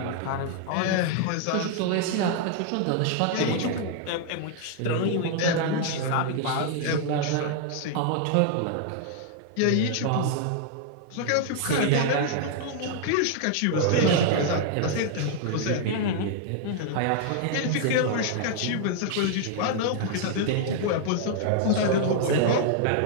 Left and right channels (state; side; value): different; both; correlation 0.00